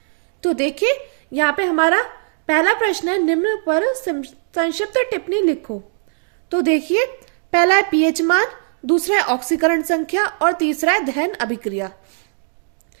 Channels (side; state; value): left; silent; digital silence